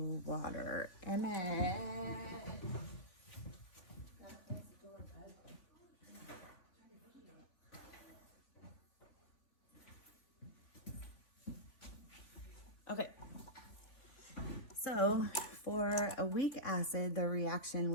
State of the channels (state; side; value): late; right; 3.6 ms